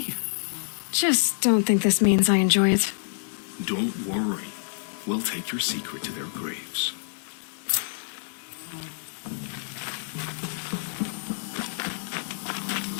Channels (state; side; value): silent; right; digital silence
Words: Just don't think this means I enjoy it. Don't worry. We'll take your secret to their graves.